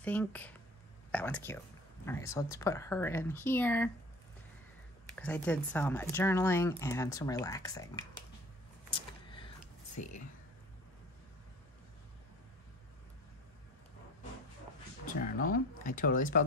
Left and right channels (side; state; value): both; normal; correlation 0.45